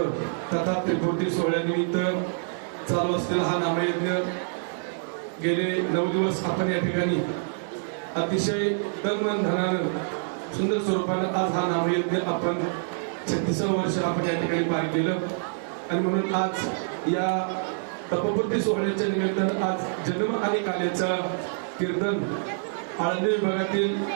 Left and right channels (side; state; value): left; silent; 61 dB below the other